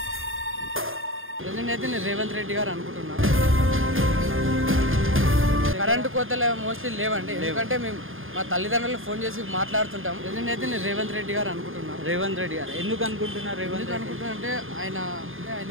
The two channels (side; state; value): left; late; 0.59 ms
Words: అయితే నేను రేవంత్ రెడ్డి గారు అనుకుంటున్నా. కరెంటు కోతలు మోస్ట్లీ లేవండి, ఎందుకంటే మేము మా తల్లిదండ్రులు ఫోన్ చేసి మాట్లాడుతుంటాం. అయితే నేను రేవంత్ రెడ్డి గారు అనుకుంటున్నా. రేవంత్ రెడ్డి గారు ఎందుకు అనుకుంటున్నారు? రేవంత్ అనుకుంటున్నా అంటే ఆయన